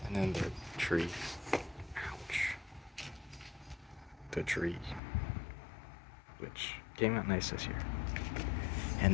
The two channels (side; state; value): right; drops out; at 5.0 s